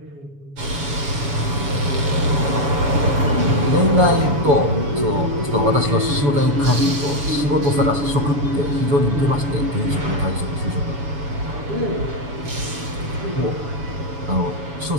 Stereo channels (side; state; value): left; late; 7.1 ms